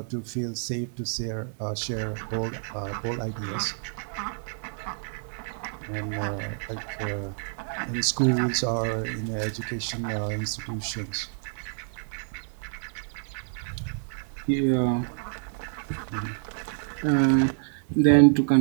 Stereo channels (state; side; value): silent; left; digital silence